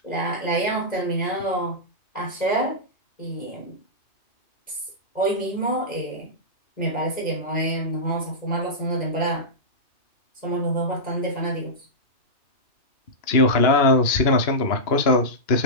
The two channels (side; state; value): right; late; 2.9 ms